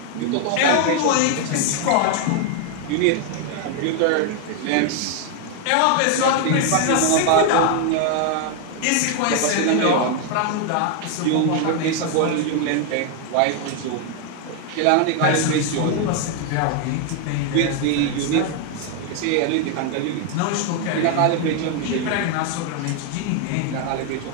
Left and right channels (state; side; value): different; both; correlation 0.01